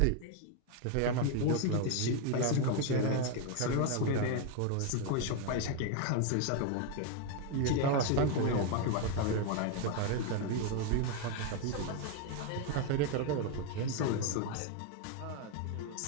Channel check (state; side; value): different; both; correlation 0.01